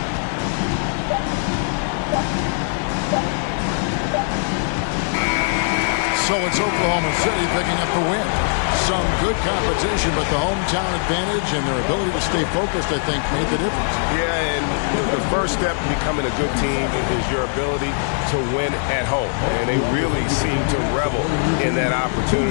So it's Oklahoma City picking up the win. Some good competition, but the hometown advantage and their ability to stay focused, I think, made the difference. Yeah, and the first step in becoming a good team is your ability to win at home. And they really seem to revel in that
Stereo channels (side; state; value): right; silent; 65 dB below the other